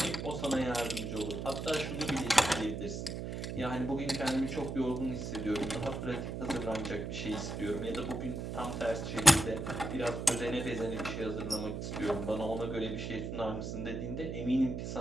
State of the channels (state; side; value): noise; right; hum, 4 dB below the sound